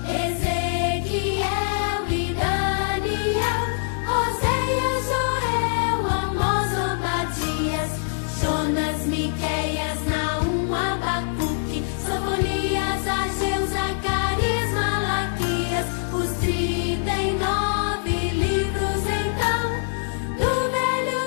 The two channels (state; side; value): silent; right; digital silence